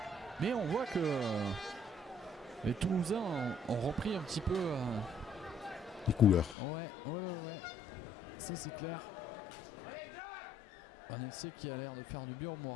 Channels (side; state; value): right; drops out; at 6.6 s